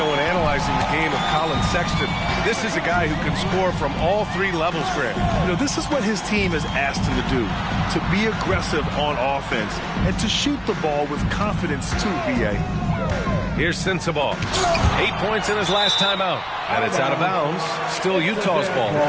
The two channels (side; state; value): both; identical; correlation 1.00